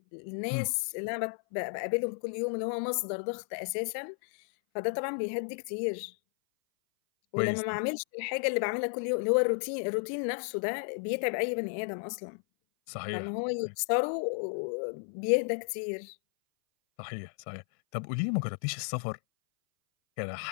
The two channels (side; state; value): right; silent; 56 dB below the other